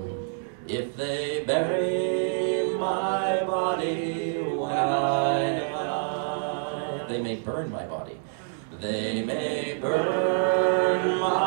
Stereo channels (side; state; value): left; silent; digital silence